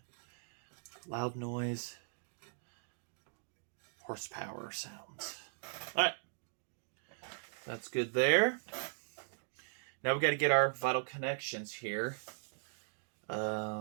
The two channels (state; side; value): silent; left; digital silence